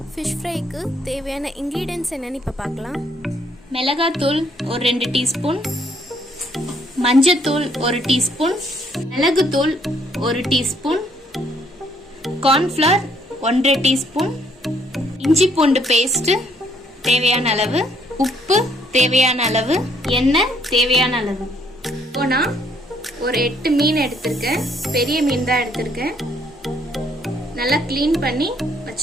fish fryக்கு தேவையான ingredients என்னன்னு இப்ப பார்க்கலாம். மிளகாய்த்தூள் ஒரு 2 டீஸ்பூன், மஞ்சள்தூள் 1 டீஸ்பூன், மிளகுத்தூள் 1 டீஸ்பூன், cornflour 1/2 டீஸ்பூன், இஞ்சி பூண்டு பேஸ்ட் தேவையான அளவு, உப்பு தேவையான அளவு, எண்ணெய் தேவையான அளவு. இப்போ நான் ஒரு 8 மீன் எடுத்திருக்கேன். பெரிய மீன் தான் எடுத்திருக்கேன். நல்லா க்ளீன் பண்ணி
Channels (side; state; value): both; normal; correlation 0.67